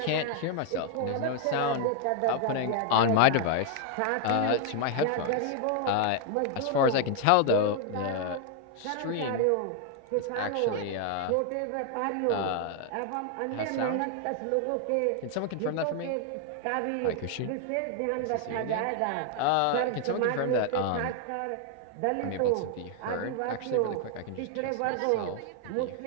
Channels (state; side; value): different; both; correlation 0.00